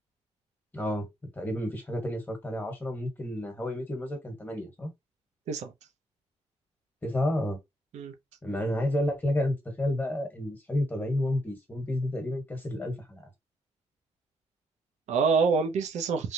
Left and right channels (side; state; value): both; normal; correlation 0.74